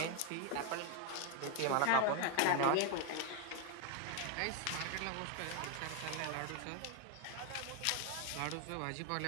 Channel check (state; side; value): different; both; correlation 0.01